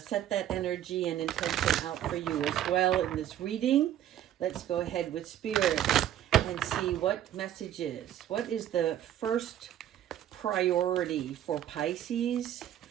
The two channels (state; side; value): quieter; left; 11.3 dB